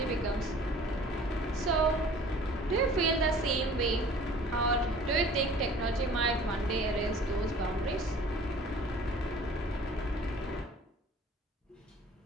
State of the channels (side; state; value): both; normal; correlation 0.48